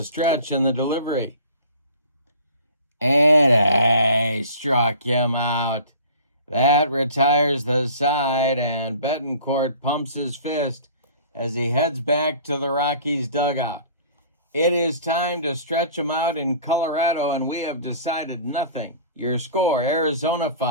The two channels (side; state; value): both; inverted; correlation -0.45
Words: stretch and the delivery. And struck him out. That retires the side, and Betancourt pumps his fist as he heads back to the Rockies dugout. It is time to stretch them out in Colorado, and we have decided nothing. Your score, Arizona